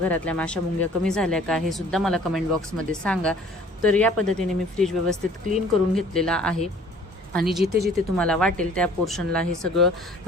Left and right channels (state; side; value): normal; both; correlation 0.53